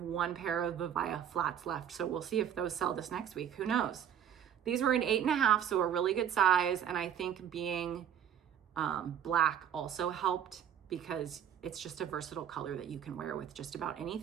1 pair of Vivaya flats left. So we'll see if those sell this next week. Who knows? These were an 8.5, so a really good size. And I think being black also helped because it's just a versatile color that you can wear with just about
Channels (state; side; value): quieter; left; 9.1 dB